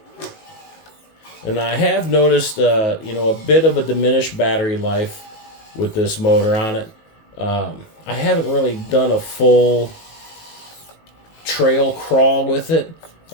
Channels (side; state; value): right; late; 18 ms